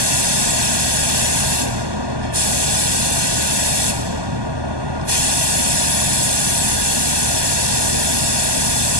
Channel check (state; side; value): late; left; 1.2 ms